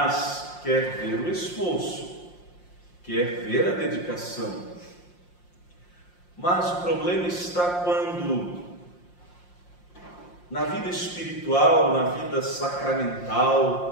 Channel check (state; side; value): late; right; 5.7 ms